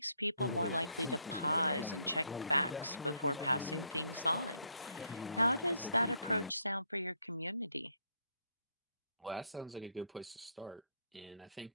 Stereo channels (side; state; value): both; inverted; correlation -0.72